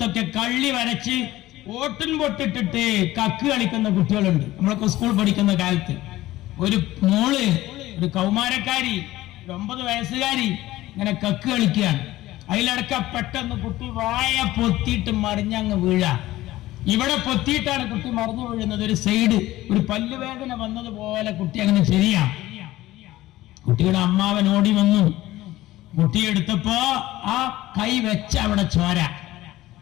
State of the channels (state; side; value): quieter; right; 16.4 dB